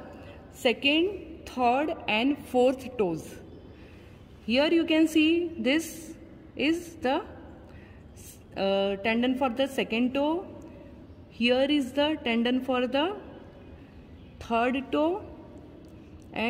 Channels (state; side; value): identical; both; correlation 1.00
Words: 2nd, 3rd and 4th toes. Here you can see this is the tendon for the 2nd toe. Here is the tendon for the 3rd toe,